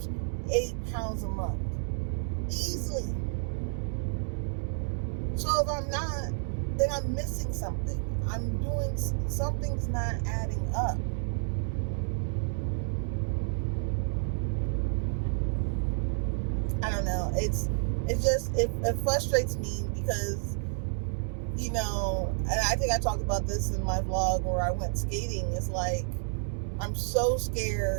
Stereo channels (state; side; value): silent; left; 58 dB below the other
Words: 8 pounds a month. Easily. So if I'm not, then I'm missing something. I'm doing, something's not adding up. I don't know. It frustrates me, because, and I think I talked about this in my vlog where I went skating. It's like, I'm so